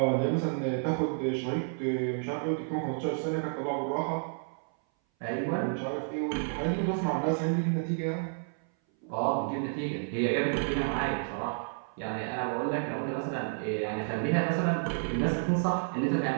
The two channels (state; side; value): silent; left; 57 dB below the other